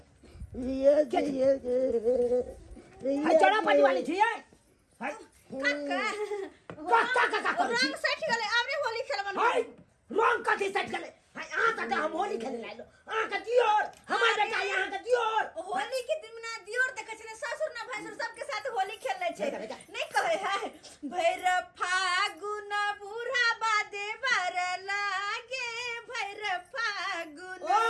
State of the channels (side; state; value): both; identical; correlation 1.00